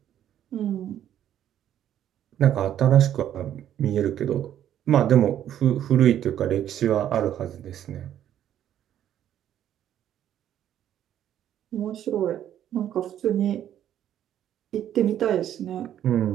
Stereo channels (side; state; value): left; quieter; 10.9 dB